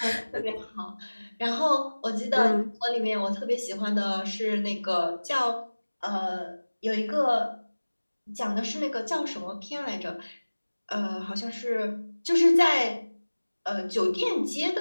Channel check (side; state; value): both; inverted; correlation -1.00